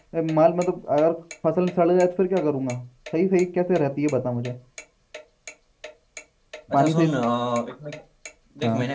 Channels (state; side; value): identical; both; correlation 1.00